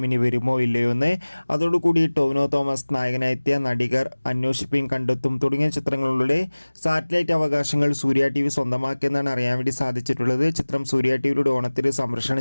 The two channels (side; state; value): both; inverted; correlation -1.00